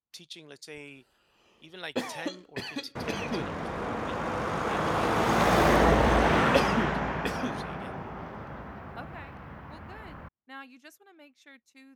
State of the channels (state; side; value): identical; both; correlation 1.00